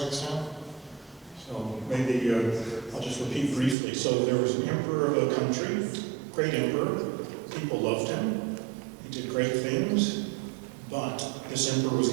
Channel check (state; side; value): drops out; left; at 3.8 s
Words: So maybe I'll just repeat briefly. So there was an emperor of a country, great emperor. People loved him. He did great things. But this emperor was